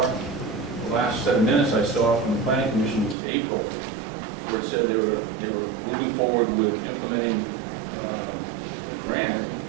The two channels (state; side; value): drops out; left; at 3.2 s